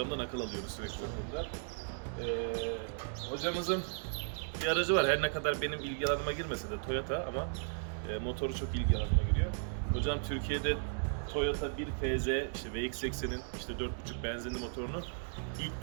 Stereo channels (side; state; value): left; silent; digital silence